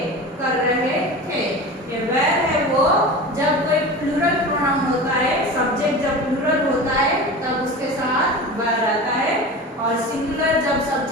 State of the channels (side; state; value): both; normal; correlation 0.31